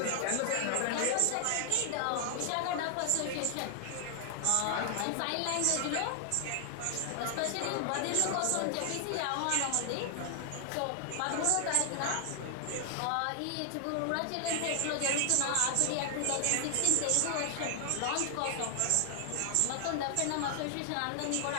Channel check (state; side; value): different; both; correlation 0.00